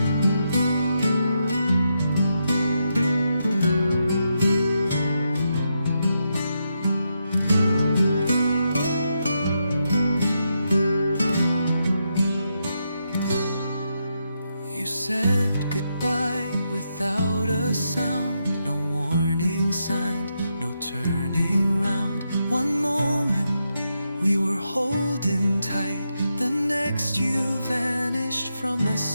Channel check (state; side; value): inverted; both; correlation -0.83